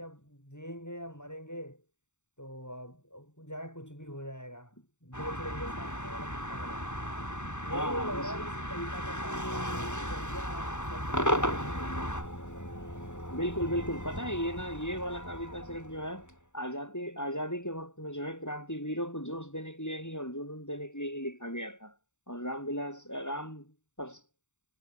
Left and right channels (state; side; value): late; right; 0.84 ms